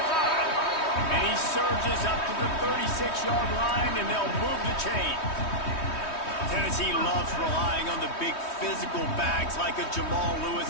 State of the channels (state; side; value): late; right; 3.2 ms